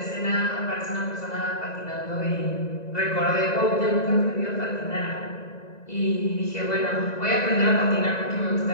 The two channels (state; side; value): late; right; 1.9 ms